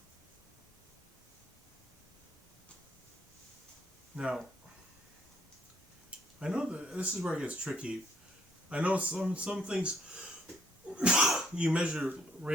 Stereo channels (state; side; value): normal; both; correlation 0.66